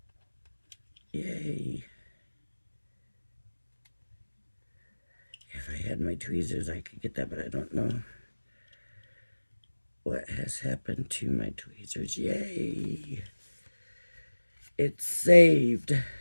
Yay. If I had my tweezers, I could get that, but I don't know what has happened to my tweezers. Yay. It's saved.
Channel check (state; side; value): inverted; both; correlation -1.00